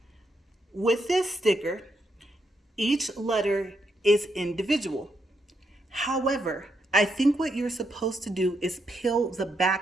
with this sticker, each letter is individual. However, I think what you're supposed to do is peel the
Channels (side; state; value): both; normal; correlation 0.80